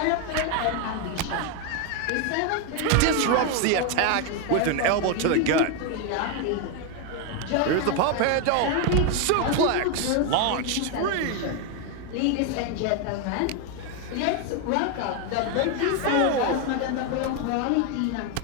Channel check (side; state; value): both; different; correlation 0.01